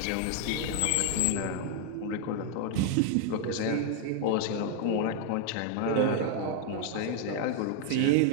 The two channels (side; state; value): both; different; correlation 0.00